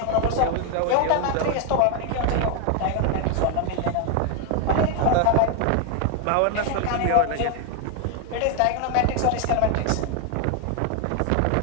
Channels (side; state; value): both; different; correlation 0.01